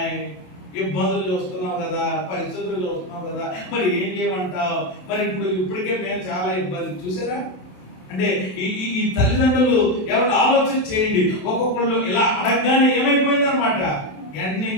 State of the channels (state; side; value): late; right; 27 ms